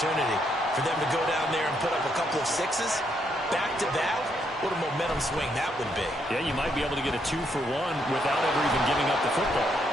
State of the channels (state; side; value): normal; both; correlation 0.75